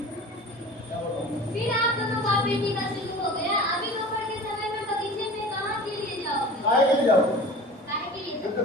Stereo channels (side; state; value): both; normal; correlation 0.39